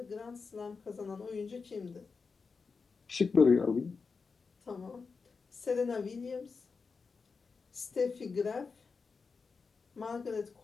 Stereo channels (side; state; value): right; quieter; 4.9 dB